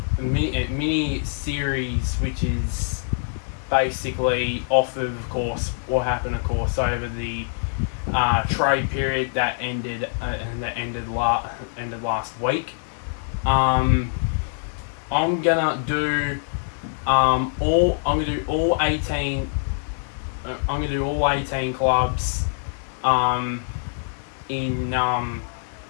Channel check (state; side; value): silent; right; digital silence